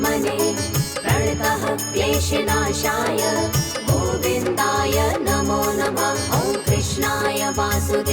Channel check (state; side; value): identical; both; correlation 1.00